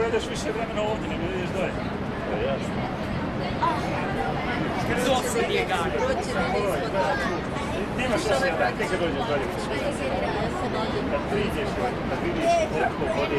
više vremena ovdje, nego ideš dalje. Da, jasno. Zosu bjeganje. Nemaš šta se raditi kad dođeš dalje. Kad priđeš, kad vidiš koliko vode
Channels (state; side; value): identical; both; correlation 1.00